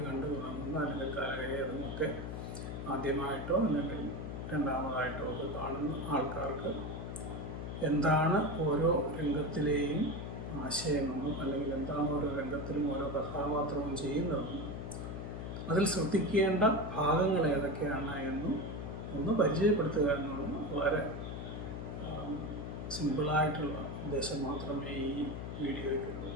കണ്ടു തുടങ്ങുന്ന അല്ലെങ്കിൽ കാലകേയവധമൊക്കെ ആദ്യമായിട്ടോ അല്ലെങ്കിൽ രണ്ടാമതായിട്ടോ ഒക്കെ കാണുന്ന ആൾക്കാർക്ക് എന്താണ് ഓരോ രംഗത്തിലെയും ആശയമെന്നും അല്ലെങ്കിൽ എന്താണ് ഓരോ രംഗത്തിലും ഓരോ കഥാപാത്രവും ചെയ്യുന്നതെന്നും അതിൽ ശ്രദ്ധിക്കേണ്ട ഭാഗങ്ങൾ ഏതൊക്കെയാണ് എന്നും ഒന്ന് പരിചയപ്പെടുത്തുക എന്നുള്ളത് വളരെ സിമ്പിളായിട്ടുള്ള ഉദ്ദേശം മാത്രമേ ഈ വീഡിയോയ്ക്കുള്ളൂ.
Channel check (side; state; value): left; noise; hum, 6 dB below the sound